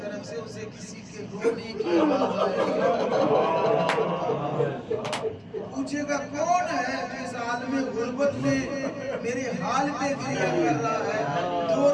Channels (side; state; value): both; identical; correlation 1.00